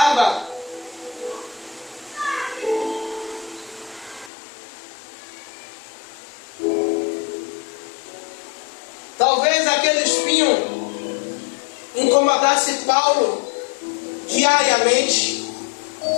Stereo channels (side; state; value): right; drops out; at 4.3 s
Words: Talvez aquele espinho incomodasse Paulo diariamente.